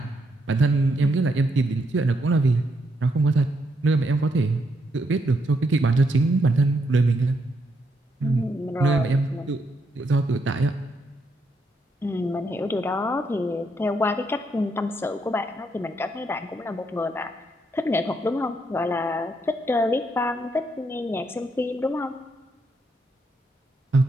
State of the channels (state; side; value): normal; both; correlation 0.77